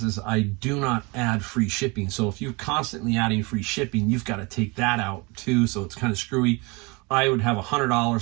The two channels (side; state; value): left; quieter; 27.4 dB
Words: I do not add free shipping. So if you're constantly adding free shipping, you've got to take that out too. So it's kind of screwy. I would have $100,